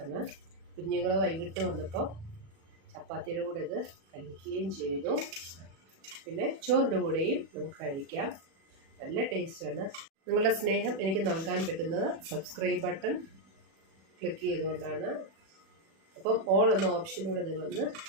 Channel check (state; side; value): late; left; 36 ms